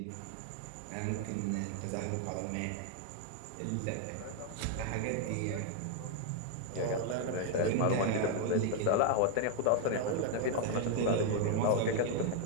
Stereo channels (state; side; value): different; both; correlation 0.00